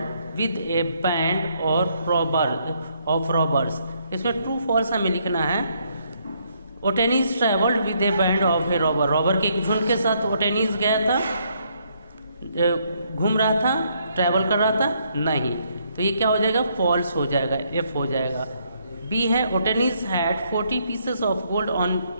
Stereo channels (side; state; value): both; inverted; correlation -0.71